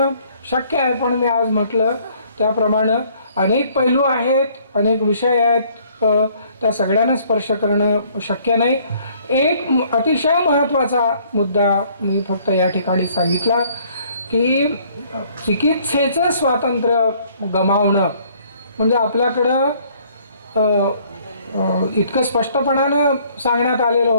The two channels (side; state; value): both; inverted; correlation -0.61